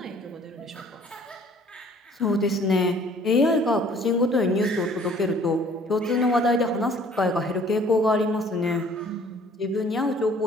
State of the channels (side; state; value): both; normal; correlation 0.55